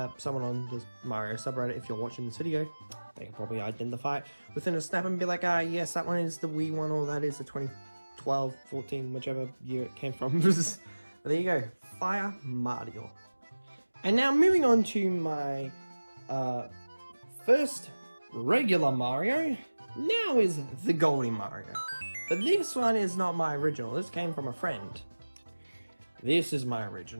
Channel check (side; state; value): both; inverted; correlation -1.00